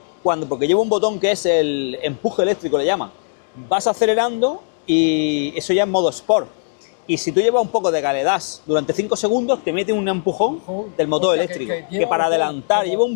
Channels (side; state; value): right; silent; digital silence